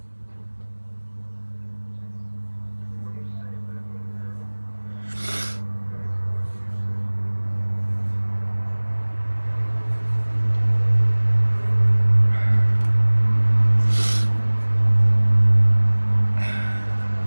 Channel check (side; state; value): both; inverted; correlation -1.00